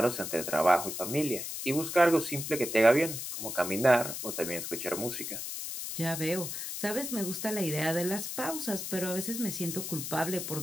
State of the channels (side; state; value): left; noise; hiss, 6 dB below the sound